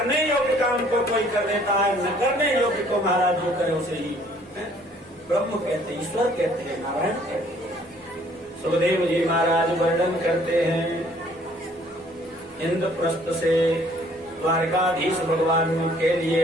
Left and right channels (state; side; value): normal; both; correlation 0.59